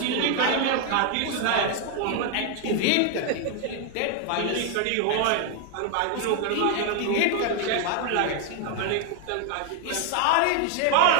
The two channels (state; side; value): different; both; correlation 0.01